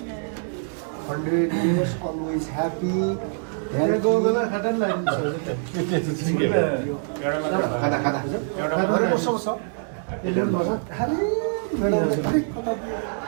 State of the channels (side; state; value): left; silent; 62 dB below the other